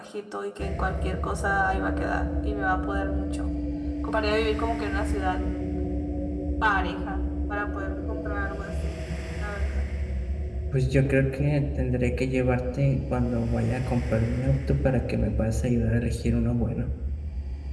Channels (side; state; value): both; identical; correlation 1.00